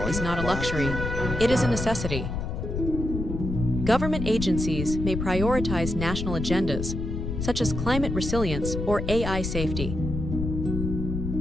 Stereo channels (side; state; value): left; noise; rumble, 4 dB below the sound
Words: is not a luxury, it is a necessity. Government agencies may prioritize national agendas, such as climate resilience or AI safety.